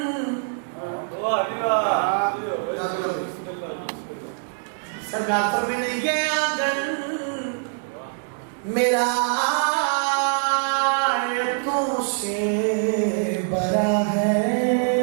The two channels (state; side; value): silent; left; digital silence